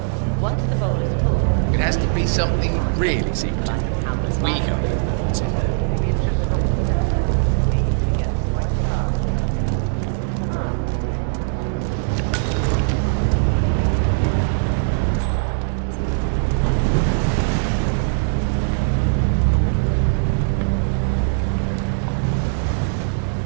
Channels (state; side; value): silent; left; digital silence